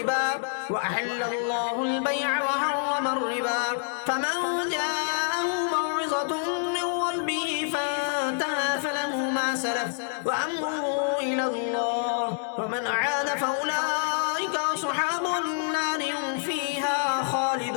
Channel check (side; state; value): right; silent; digital silence